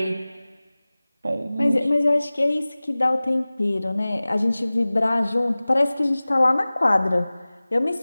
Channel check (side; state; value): both; inverted; correlation -0.99